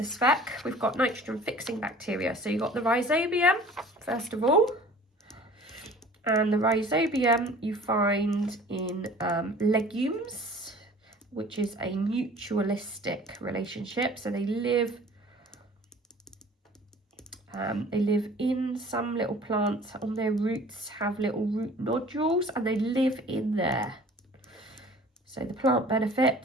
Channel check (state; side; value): normal; both; correlation 0.47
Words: spec, we've got nitrogen fixing bacteria. So you've got the rhizobium, first of all. And the rhizobium you find in legumes, which is a mutualistic relationship. So they live in some little plants. On their roots have little root nodules, and they live in there. So the plant